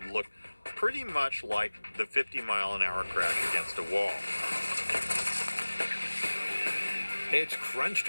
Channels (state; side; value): inverted; both; correlation -1.00